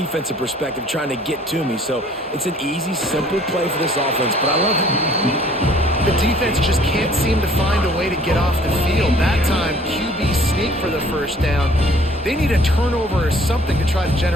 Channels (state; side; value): normal; both; correlation 0.56